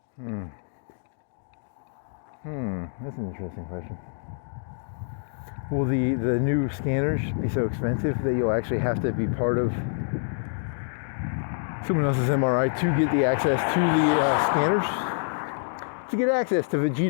That's an interesting question. Will the new scanners be so expensive that you'll actually have to be part of someone else's MRI to get the access to the scanners? To get access to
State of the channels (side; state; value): right; silent; digital silence